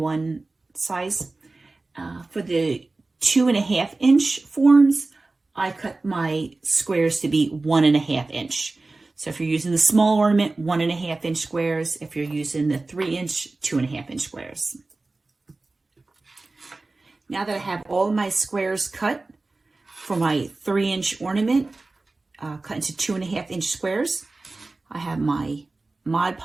size. For the 2.5-inch forms, I cut my squares to be 1.5-inch. So if you're using the small ornament, 1.5-inch squares. If you're using the 3-inch, 2.5-inch squares. Now that I have all my squares cut, for my 3-inch ornament, cut into 2.5-inch squares, I have my Mod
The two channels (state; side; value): quieter; left; 3.3 dB